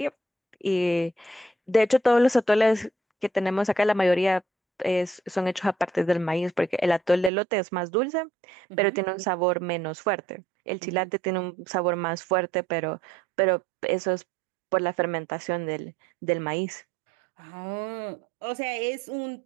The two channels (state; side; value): drops out; left; at 7.3 s